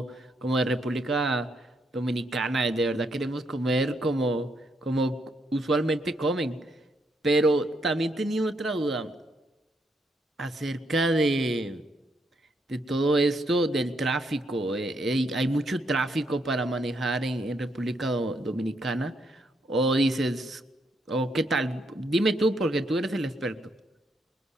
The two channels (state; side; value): normal; both; correlation 0.76